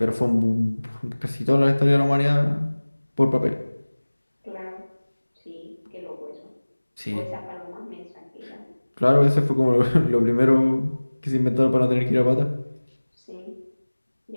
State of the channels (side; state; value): both; inverted; correlation -1.00